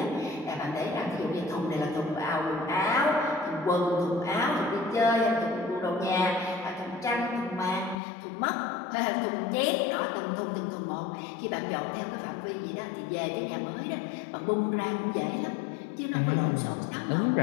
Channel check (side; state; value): right; drops out; at 8.0 s